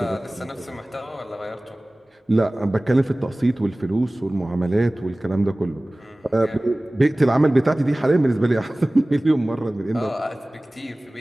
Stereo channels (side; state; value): both; normal; correlation 0.98